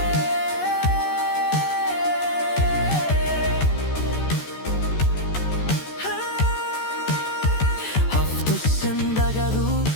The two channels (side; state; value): right; late; 14 ms